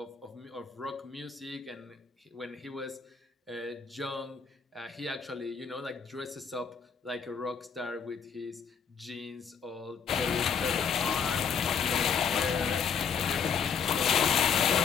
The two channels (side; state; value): right; quieter; 6.7 dB